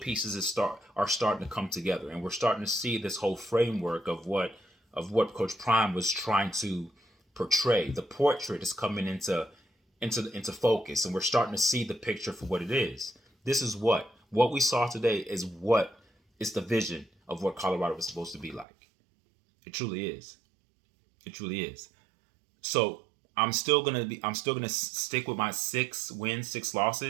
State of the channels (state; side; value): drops out; left; at 18.7 s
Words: are starting to come together, and we're starting to see this whole framework of what Coach Prime was trying to portray. The portrait is coming into focus, and we're starting to see the picture for what it is. This is what we saw today is what is the vision of what Colorado was supposed to be like. It truly is. It truly is. So I'm still gonna stick with my 6 wins, 6